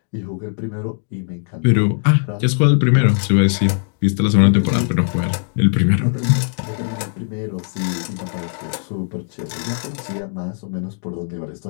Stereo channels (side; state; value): right; silent; digital silence